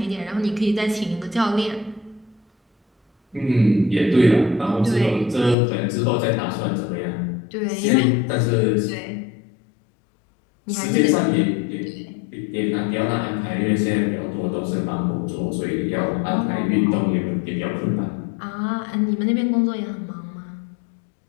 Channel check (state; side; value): drops out; right; at 5.6 s